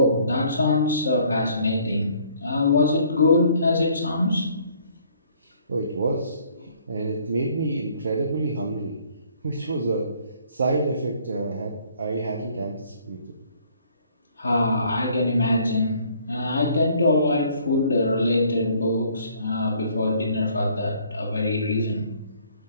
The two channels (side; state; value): both; inverted; correlation -0.61